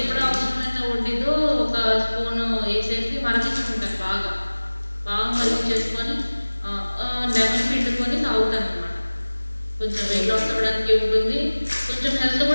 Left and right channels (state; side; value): inverted; both; correlation -1.00